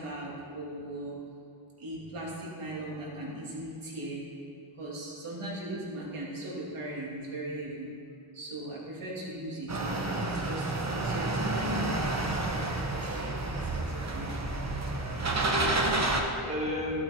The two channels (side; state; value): both; normal; correlation 0.20